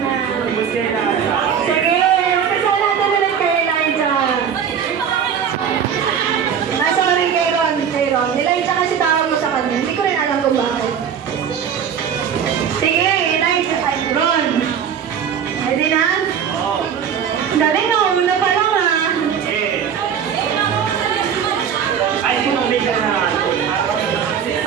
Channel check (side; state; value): left; quieter; 7.9 dB